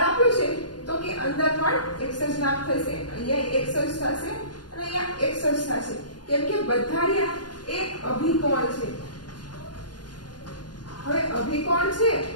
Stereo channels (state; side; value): late; right; 0.70 ms